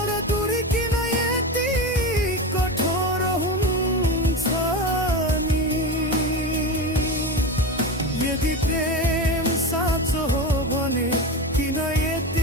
दूरी किन यति कठोर हुन्छ नि। यदि प्रेम साँचो हो भने किन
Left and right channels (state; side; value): normal; both; correlation 0.22